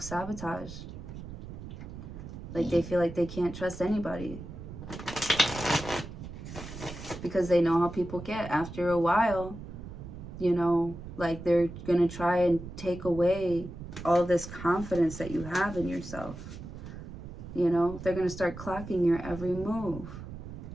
Like they feel like they can't trust anybody. Because they know how people get. After a while, you know, like they're going to try and take away all this confidence that you have in yourself. You know, they're going to start clocking your every move.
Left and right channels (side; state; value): right; noise; rumble, 11 dB below the sound